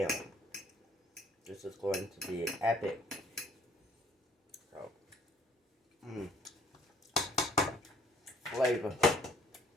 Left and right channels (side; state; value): both; normal; correlation 0.59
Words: own. This is going to be epic. So, flavor.